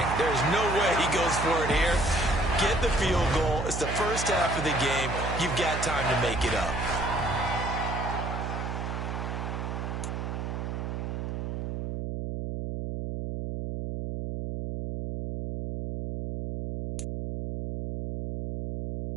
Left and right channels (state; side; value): noise; right; hum, 4 dB below the sound